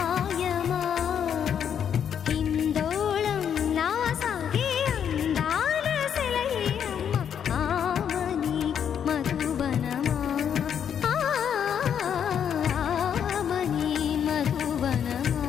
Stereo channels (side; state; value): right; quieter; 8.4 dB